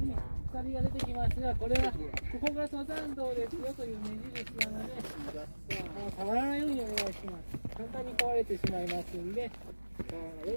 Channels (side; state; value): both; inverted; correlation -1.00